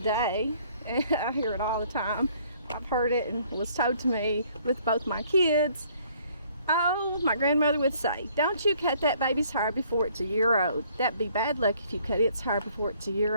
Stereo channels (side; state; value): both; inverted; correlation -0.61